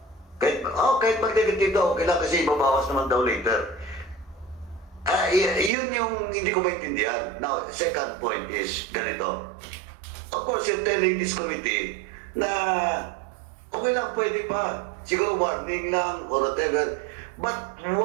Kahit mag-negative daw, okay lang kasi ibabawas naman daw later. Yun yung hindi ko maintindihan. Now, second point is ganito. Of course, you're telling this committee na okay lang, pwede pa. Siguro warning lang or whatever. But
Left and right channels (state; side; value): drops out; left; at 5.7 s